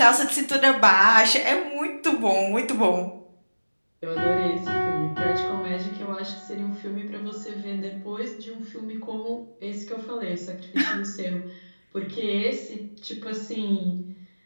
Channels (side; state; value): both; inverted; correlation -1.00